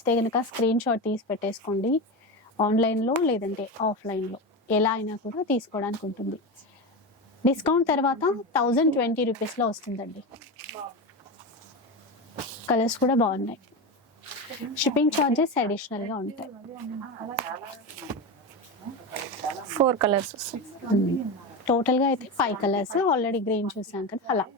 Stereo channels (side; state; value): both; normal; correlation 0.19